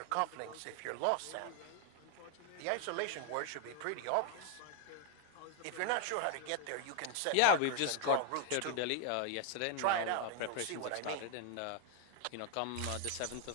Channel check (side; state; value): both; different; correlation 0.00